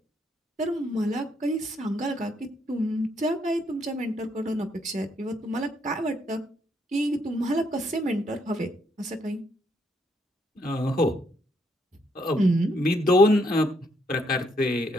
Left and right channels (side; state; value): both; normal; correlation 0.73